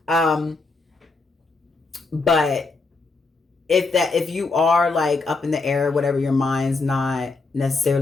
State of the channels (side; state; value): right; quieter; 3.8 dB